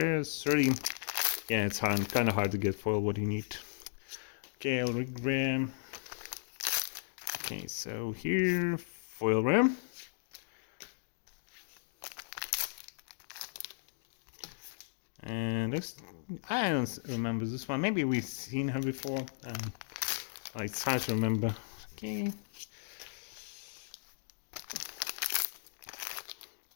30? Yeah, it's kind of hard to get foil what you need. Okay, I'll ram. Okay, so here foil ram. And this, I don't remember this one. Maybe we've seen her before. It's hard to remember. Okay.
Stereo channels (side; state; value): right; silent; digital silence